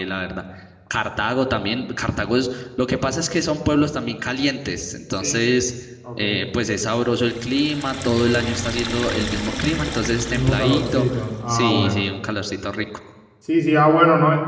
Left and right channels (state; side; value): identical; both; correlation 1.00